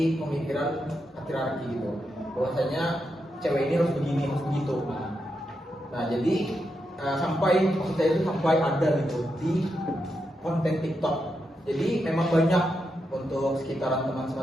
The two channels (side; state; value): both; normal; correlation 0.85